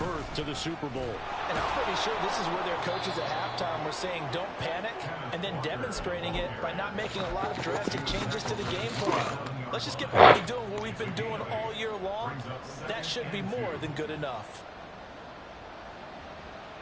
to the Super Bowl. And I'm pretty sure this is where their coaches at halftime were saying don't panic, and then demonstrating it by not making a lot of drastic changes to the game plan. Let's just get back to doing what we've been doing all year long. That should be more than good enough.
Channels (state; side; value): identical; both; correlation 1.00